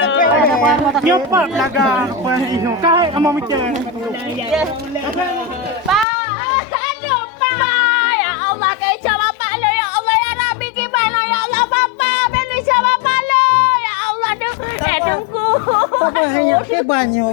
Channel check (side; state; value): right; drops out; at 6.1 s